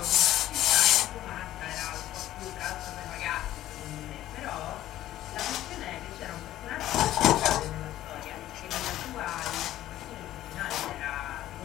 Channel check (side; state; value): right; quieter; 13.8 dB